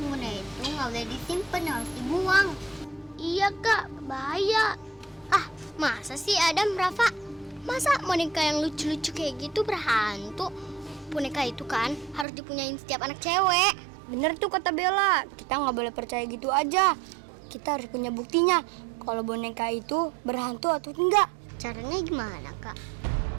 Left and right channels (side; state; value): left; drops out; at 12.2 s